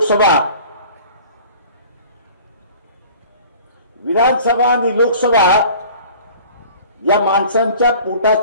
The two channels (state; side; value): inverted; both; correlation -0.46